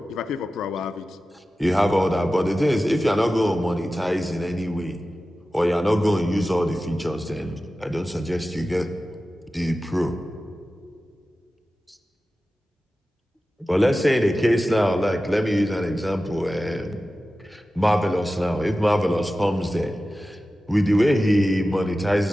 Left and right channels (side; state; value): both; normal; correlation 0.94